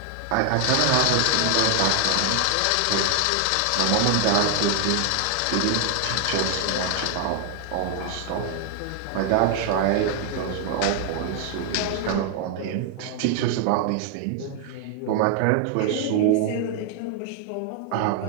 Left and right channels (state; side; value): different; both; correlation 0.00